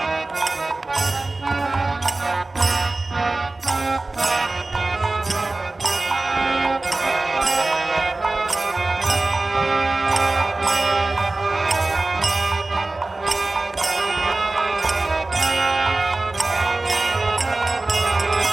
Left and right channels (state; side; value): quieter; left; 3.1 dB